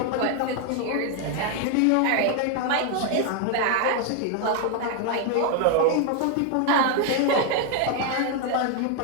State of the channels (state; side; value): different; both; correlation 0.00